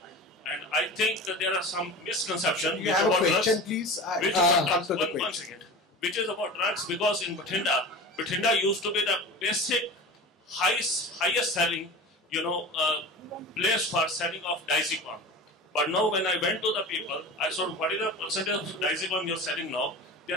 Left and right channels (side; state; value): both; normal; correlation 0.33